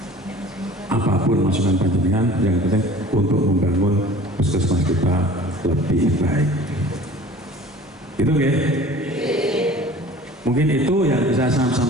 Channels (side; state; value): both; normal; correlation 0.45